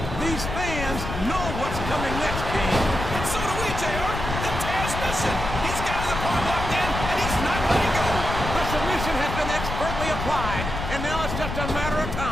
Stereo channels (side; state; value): left; noise; rumble, 5 dB below the sound